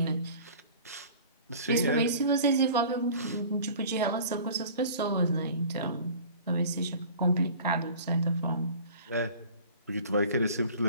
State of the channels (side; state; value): both; inverted; correlation -0.44